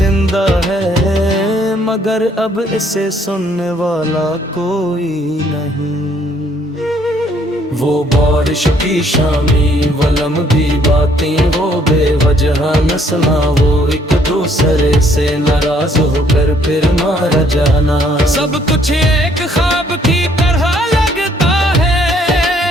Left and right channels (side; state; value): both; normal; correlation 0.65